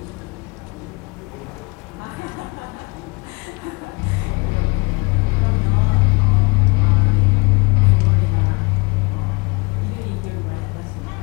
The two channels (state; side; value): quieter; right; 27.9 dB